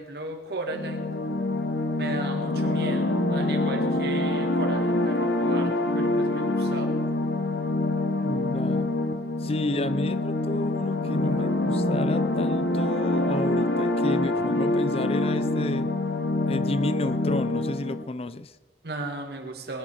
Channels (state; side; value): normal; both; correlation 0.56